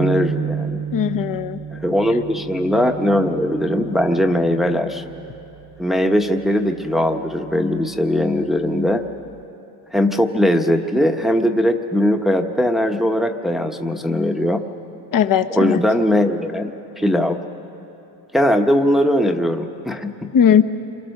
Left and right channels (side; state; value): both; normal; correlation 0.73